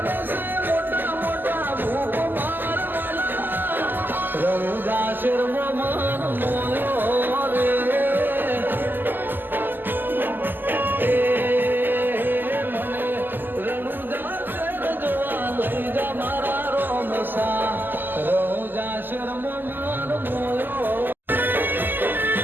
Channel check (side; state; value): left; late; 0.091 ms